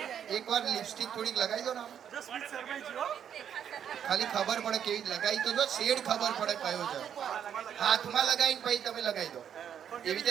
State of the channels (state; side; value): quieter; left; 8.8 dB